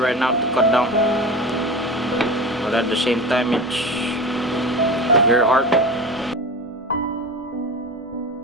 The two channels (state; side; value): normal; both; correlation 0.31